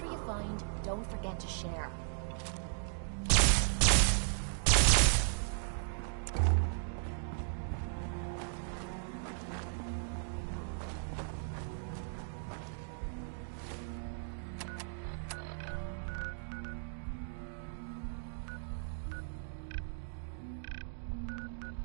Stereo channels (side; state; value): left; silent; digital silence